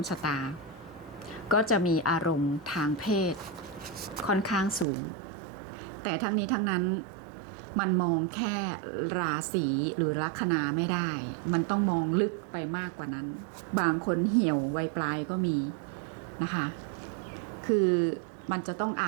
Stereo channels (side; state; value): left; drops out; at 4.9 s